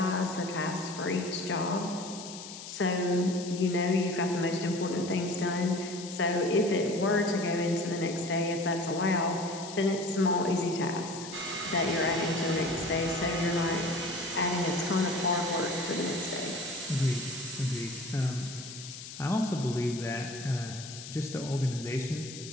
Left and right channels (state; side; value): noise; left; hiss, 12 dB below the sound